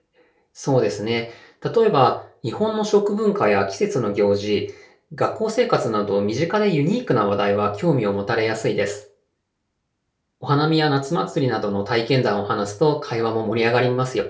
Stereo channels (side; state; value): both; identical; correlation 1.00